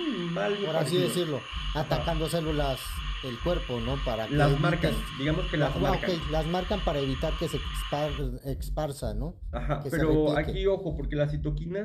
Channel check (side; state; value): both; identical; correlation 1.00